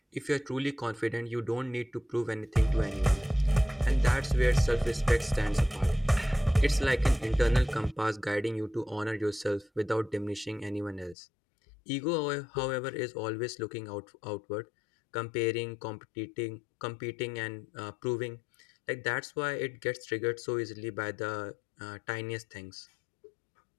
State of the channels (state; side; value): drops out; right; at 11.2 s